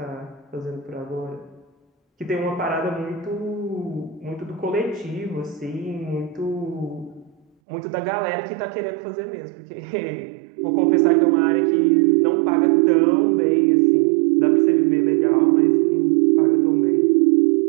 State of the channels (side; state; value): left; drops out; at 7.5 s